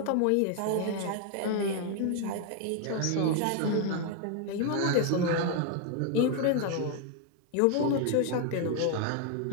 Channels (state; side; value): different; both; correlation 0.00